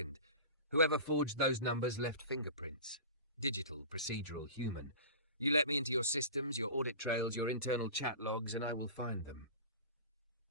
whoever forged those numbers left fingerprints. Digital, procedural, human. You let me into your systems, your audit trails, your internal chat logs, and I will find them.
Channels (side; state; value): both; inverted; correlation -0.36